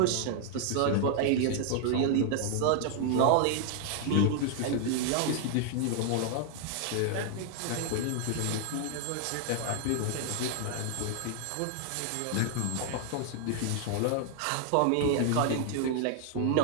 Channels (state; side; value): different; both; correlation 0.00